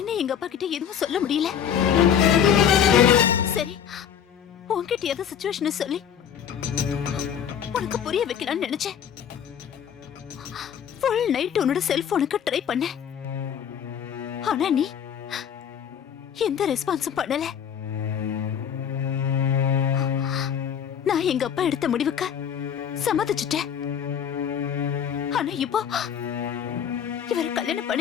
எங்க அப்பா கிட்ட எதுவும் சொல்ல முடியல. சரி, உன்கிட்ட ஏதோ சிச்சுவேஷன் சொல்லி உனக்கு புரிய வைக்கலாம்னு நினைச்சேன். ஃபுல் நைட் உன்னோட செல்போனுக்கு ட்ரை பண்ண. ஆனா நீ எந்த ரெஸ்பான்ஸும் பண்ணல. நான் எங்க அப்பா எடுத்த முடிவுக்கு சம்மதிச்சுட்டேன். ஆனா இப்போ இவரை கல்யாணம்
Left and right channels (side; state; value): right; quieter; 8.5 dB